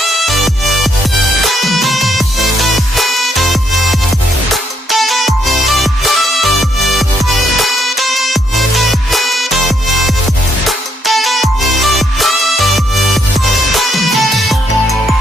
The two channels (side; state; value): both; normal; correlation 0.73